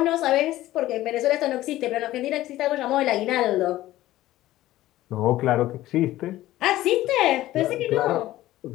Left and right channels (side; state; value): right; quieter; 15.4 dB